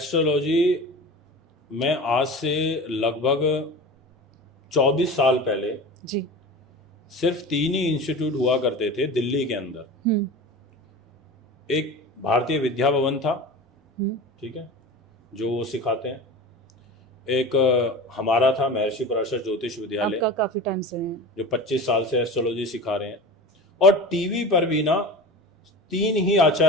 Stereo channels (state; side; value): normal; both; correlation 0.33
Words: में आज से लगभग 24 साल पहले जी सिर्फ 3 ही इंस्टीट्यूट हुआ करते थे दिल्ली के अंदर। एक भारतीय विद्या भवन था, ठीक है, जो वो सिखाते हैं। एक हमारा था महर्षि पराशर ज्योतिष विद्यालय, काफी टाइम से है, जो 25 साल से एस्ट्रोलॉजी सिखा रहे हैं। और टीवी पर भी ना 3 ही